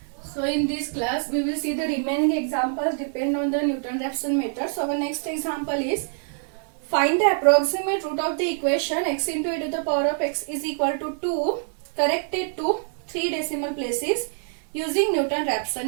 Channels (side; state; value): left; silent; 60 dB below the other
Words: So in this class we will see the remaining examples depend on the Newton-Raphson method. So our next example is find the approximate root of the equation x into e to the power of x is equal to 2 corrected to 3 decimal places using